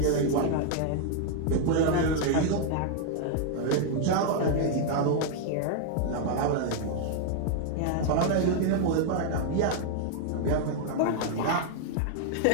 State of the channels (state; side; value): different; both; correlation 0.00